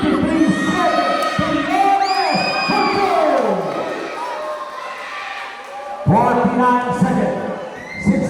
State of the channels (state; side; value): identical; both; correlation 1.00